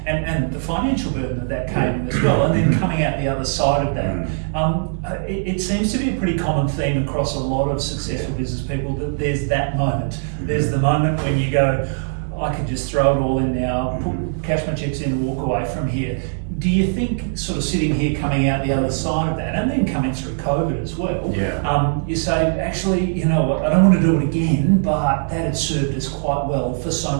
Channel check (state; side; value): silent; left; digital silence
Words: and the financial burden that came as well, and then coming out the other side of that. It seems to be a pretty common theme across a lot of successful business people that there's that moment. There's the moment when you go, I can just throw it all in now, cash my chips in and walk away from here. Do you think, sort of sitting here coming out the other side of that, and then coming through COVID as well, you say, actually, you know what, I don't want to do it again, but that had served us quite well for so